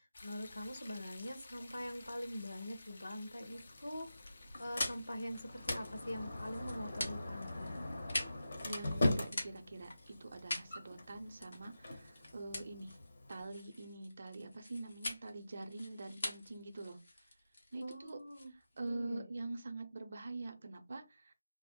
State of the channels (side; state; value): both; inverted; correlation -0.91